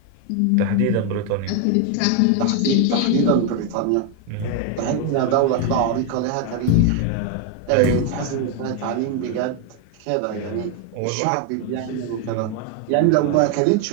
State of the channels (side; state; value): both; different; correlation 0.01